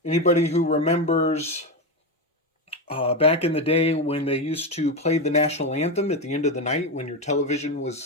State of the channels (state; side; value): normal; both; correlation 0.13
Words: Anybody who remembers back in the day when they used to play the national anthem at the end of the night when your television